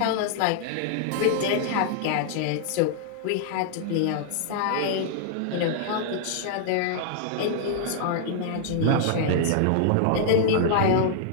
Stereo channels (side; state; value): both; different; correlation -0.01